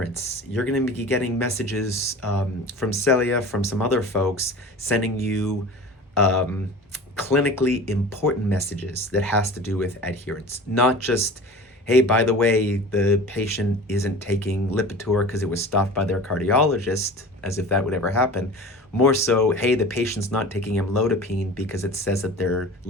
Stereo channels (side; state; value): both; normal; correlation 0.38